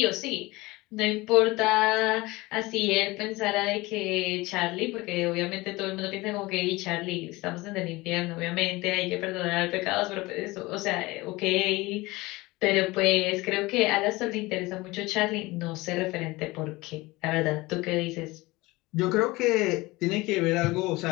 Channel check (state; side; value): quieter; right; 21.3 dB